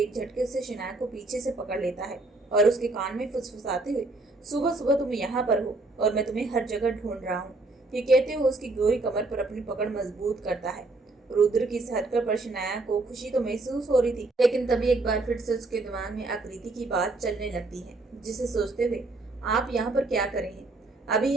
झटके से शनाया को पीछे से पकड़ लेता है और उसके कान में फुसफुसाते हुए, सुबह सुबह तुम यहाँ पर हो और मैं तुम्हें हर जगह ढूंढ रहा हूँ। ये कहते हुए उसकी गोरी कमर पर अपनी पकड़ मजबूत करता है। रुद्र की इस हरकत पर शनाया को खुशी तो महसूस हो रही थी, लेकिन तभी एक बार फिर से उसके दिमाग में आकृति की बात चलने लगती है, जिसे सोचते हुए, आप यहाँ पर क्या कर रहे हैं? अभी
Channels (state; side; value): quieter; left; 3.2 dB